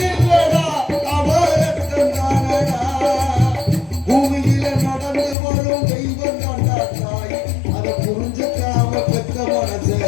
இல்லடா அவ ரத்தம் தானடா பூமியில நடந்து வரும் தெய்வம் தாண்டா தாய் அதை புரிஞ்சுக்காம பெற்ற மனசை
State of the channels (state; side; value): drops out; right; at 5.4 s